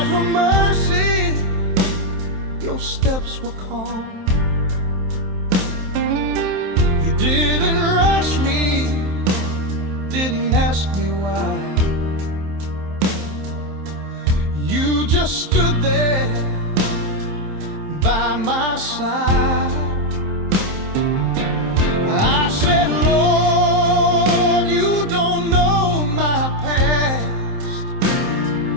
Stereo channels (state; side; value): late; left; 27 ms